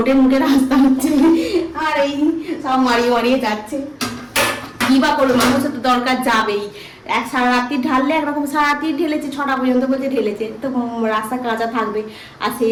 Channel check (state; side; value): identical; both; correlation 1.00